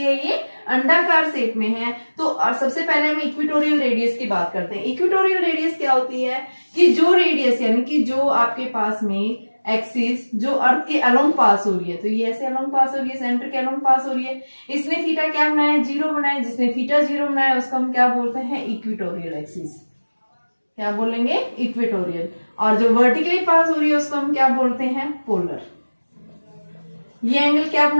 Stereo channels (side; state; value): both; inverted; correlation -1.00